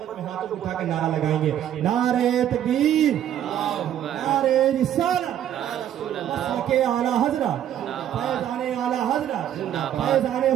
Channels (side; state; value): left; quieter; 10.8 dB